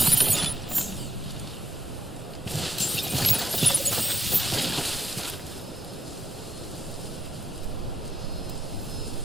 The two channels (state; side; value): normal; both; correlation 0.81